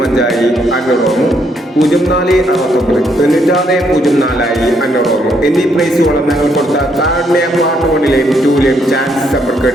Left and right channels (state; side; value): normal; both; correlation 0.73